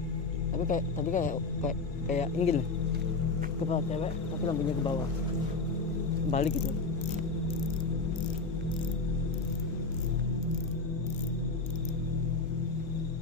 Tapi kayak ini gini. Kepala cewek tapi lampunya ke bawah. Balik gitu.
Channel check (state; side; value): quieter; right; 3.8 dB